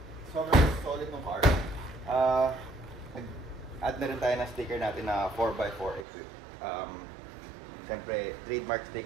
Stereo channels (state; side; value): drops out; left; at 6.1 s